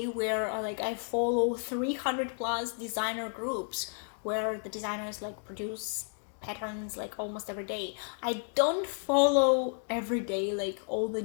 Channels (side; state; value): right; silent; 56 dB below the other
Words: where like I follow 300 plus designer groups where the designers like produce patterns like almost every day. I don't follow every day like all the